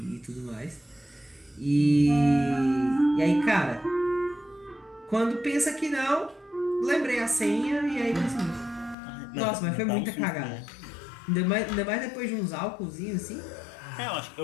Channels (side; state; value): right; drops out; at 9.0 s